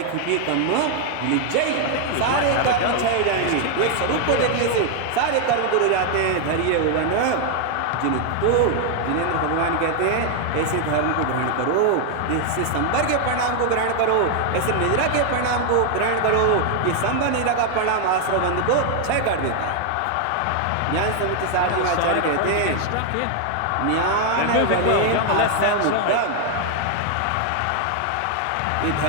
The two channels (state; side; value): different; both; correlation 0.00